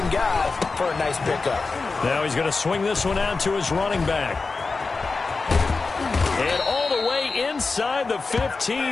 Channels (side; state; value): right; quieter; 4.1 dB